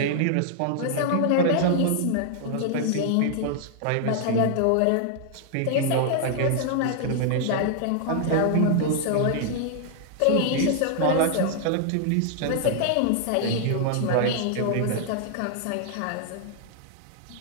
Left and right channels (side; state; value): both; different; correlation 0.00